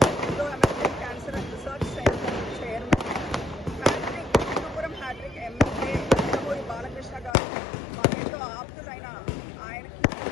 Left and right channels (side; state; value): right; drops out; at 7.4 s